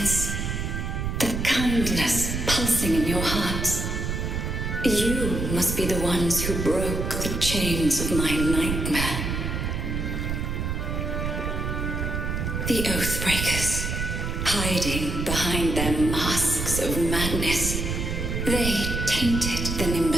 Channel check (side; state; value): right; noise; rumble, 2 dB below the sound